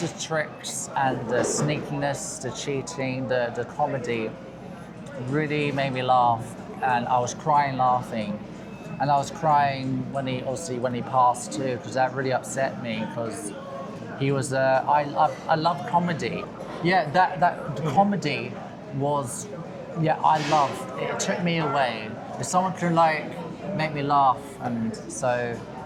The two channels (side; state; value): both; identical; correlation 1.00